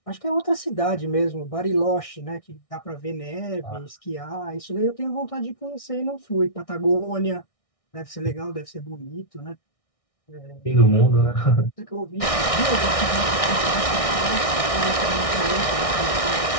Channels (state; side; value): late; right; 1.6 ms